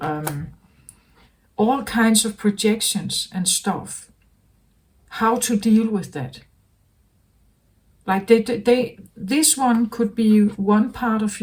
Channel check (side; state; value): both; identical; correlation 1.00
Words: all kinds of projections and stuff, how to deal with that. Like this one could be one part of